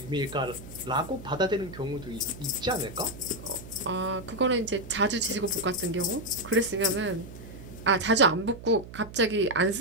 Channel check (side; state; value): right; noise; hum, 15 dB below the sound